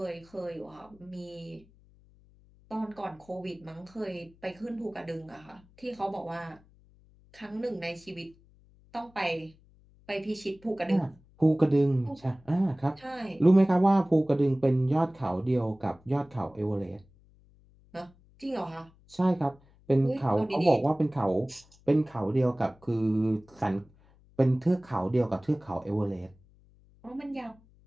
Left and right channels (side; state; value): left; noise; hum, 28 dB below the sound